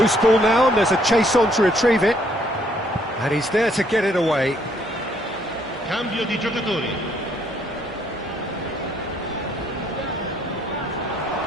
ball now, and there's a chase on to retrieve it. And he's there to get it away. Cambio di giocatori.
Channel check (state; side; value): normal; both; correlation 0.67